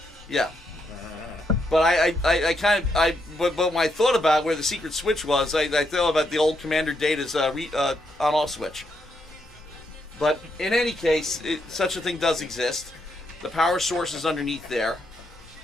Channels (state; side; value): normal; both; correlation 0.79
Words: yeah. But but when I thought about where the secret switch was, I thought about the old Commander Data's on-off switch. But in any case, such a thing does exist. The power source is underneath there.